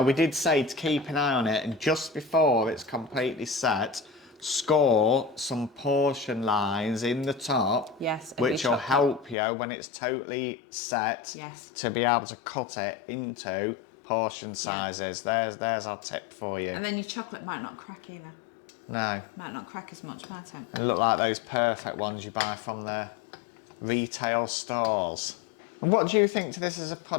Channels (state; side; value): drops out; right; at 9.3 s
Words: we did say to keep an eye on it, and just before it's completely set, score some portion lines in the top. Yes. of Which your will chocolate. help you when it's totally set. Yes. To be able to cut it into portion sizes. There's our tip for you. And then your chocolate might not crack either. No. Might not crack as much, might it? They look like those perfect ones you buy from the retail stores. And what do you think to this as a